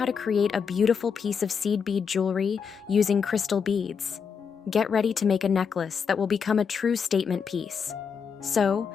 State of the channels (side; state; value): right; quieter; 6.4 dB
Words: to create a beautiful piece of seed bead jewelry using crystal beads. Get ready to make a necklace that will become a true statement piece. So,